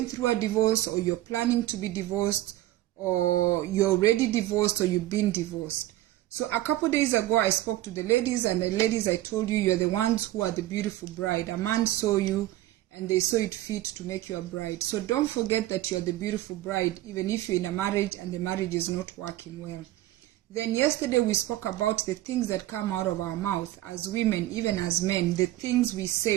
through a divorce, or you're planning to be divorced, or you're already divorced, or you've been divorced. So a couple days ago, I spoke to the ladies, and the ladies, I told you, you're the ones who are the beautiful bride. A man saw you, and they saw it fit to make you a bride. So don't forget that you're the beautiful bride, even if you're in a marriage and the marriage is not working well. Then yesterday, we spoke about the things that come out of our mouth as women, even as men, the things we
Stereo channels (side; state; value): left; quieter; 15.5 dB